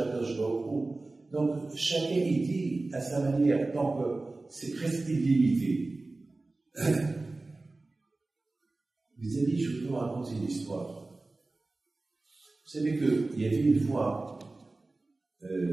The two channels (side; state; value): left; quieter; 3.2 dB